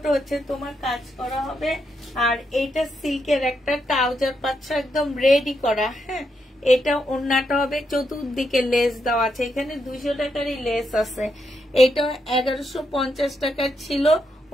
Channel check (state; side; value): normal; both; correlation 0.81